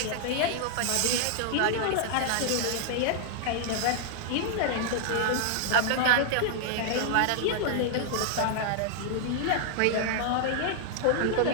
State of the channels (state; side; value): different; both; correlation -0.01